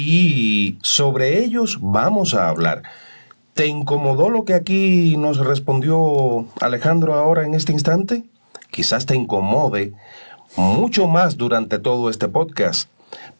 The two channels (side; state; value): both; inverted; correlation -1.00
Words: sobre ellos vamos a hablar. ¿Te incomodó lo que aquí nos respondió Alejandro ahora en este instante? Quizás te incomode mucho más durante todo este podcast.